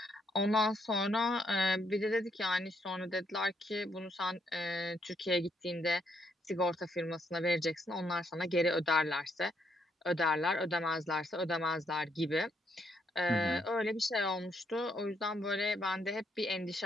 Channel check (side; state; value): both; normal; correlation 0.74